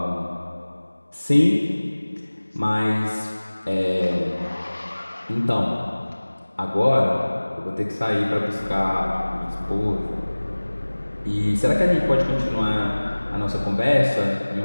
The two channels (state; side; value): inverted; both; correlation -1.00